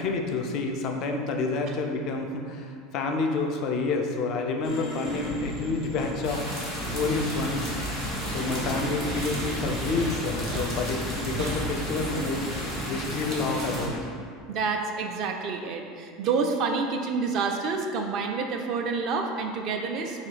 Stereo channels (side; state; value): both; normal; correlation 0.30